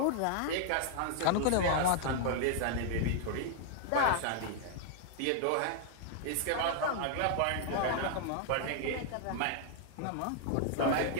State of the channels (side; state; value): both; different; correlation 0.00